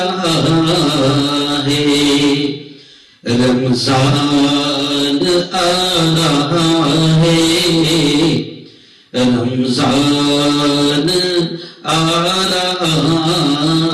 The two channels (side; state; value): both; identical; correlation 1.00